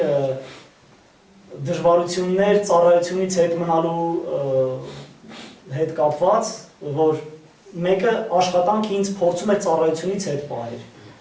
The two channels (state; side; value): identical; both; correlation 1.00